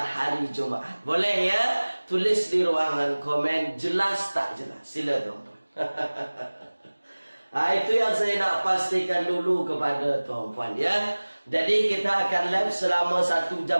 hari Jumaat. Boleh ya? Tulis di ruangan komen jelas tak jelas. Sila tuan-tuan. Itu yang saya nak pastikan dulu kepada tuan-puan ya. Jadi kita akan live selama 1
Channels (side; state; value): both; inverted; correlation -1.00